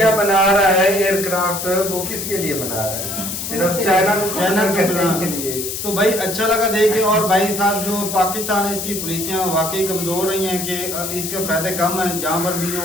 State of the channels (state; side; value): noise; left; hiss, 5 dB below the sound